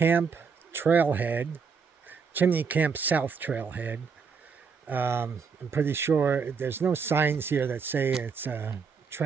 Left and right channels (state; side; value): quieter; left; 5.7 dB